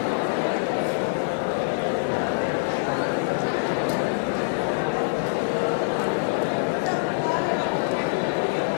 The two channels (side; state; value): right; silent; digital silence